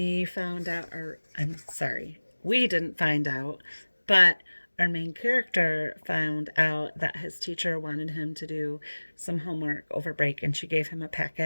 found out, or I'm sorry, we didn't find out, but our main character found out that his teacher wanted him to do some homework over break, and she gave him a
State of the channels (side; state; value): both; inverted; correlation -1.00